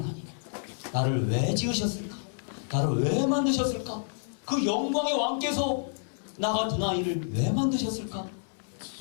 나를 왜 지으셨을까? 나를 왜 만드셨을까? 그 영광의 왕께서 나 같은 아이를 왜 만드셨을까?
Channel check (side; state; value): right; silent; 59 dB below the other